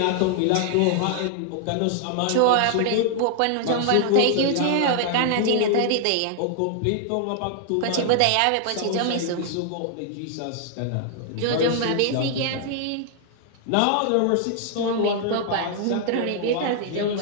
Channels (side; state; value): both; different; correlation 0.00